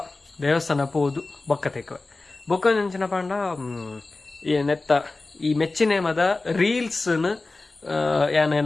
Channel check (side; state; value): right; quieter; 3.4 dB